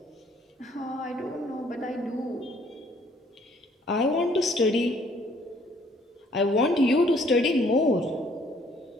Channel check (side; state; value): both; normal; correlation 0.62